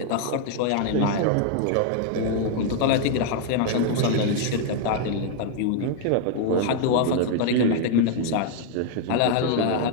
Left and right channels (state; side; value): different; both; correlation 0.00